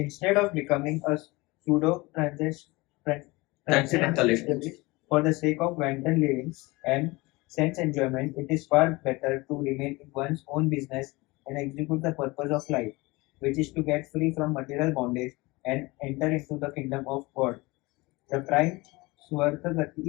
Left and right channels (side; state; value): right; quieter; 23.1 dB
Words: of becoming a pseudo transcendentalist for the sake of wanton living and sense enjoyment, it is far better to remain in one's own business and execute the purpose of life, which is to get free from material bondage and enter into the kingdom of God. The prime